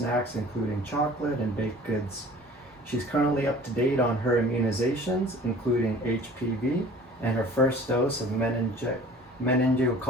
including chocolate and baked goods. She's currently up to date on her immunizations, including HPV, and her first dose of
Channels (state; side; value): normal; both; correlation 0.47